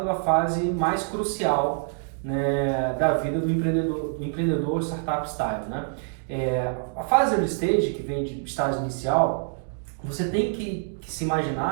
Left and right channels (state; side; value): silent; left; digital silence